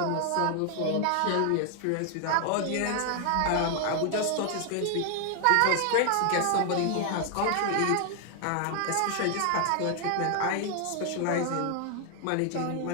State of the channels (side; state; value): both; different; correlation 0.00